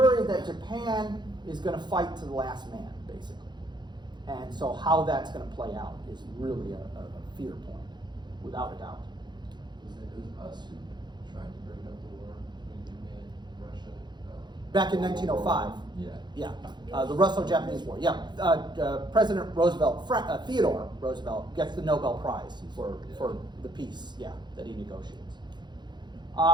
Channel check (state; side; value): late; left; 0.21 ms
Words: that Japan is going to fight to the last man, basically. And so how that's going to play out is really a fear point, without a doubt. It was us who tried to break up the war between Japan and Russia. Back in 1905. Yeah. Yeah, the Russo-Japanese War. Yeah, President Roosevelt, Theodore Roosevelt, gets the Nobel Prize for the peace. Yeah, that he negotiates.